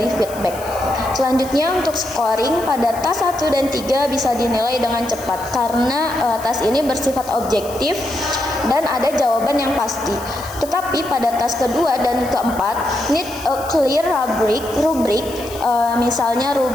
feedback. Selanjutnya untuk scoring, pada tas 1 dan 3 bisa dinilai dengan cepat karena tas ini bersifat objektif dan ada jawaban yang pasti. Tetapi pada tas kedua dan keempat need a clear rubrik, misalnya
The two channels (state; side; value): noise; left; hiss, 16 dB below the sound